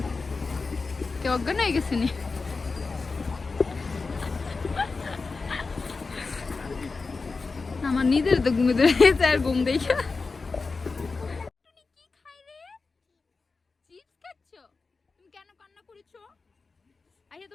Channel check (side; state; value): right; quieter; 4.2 dB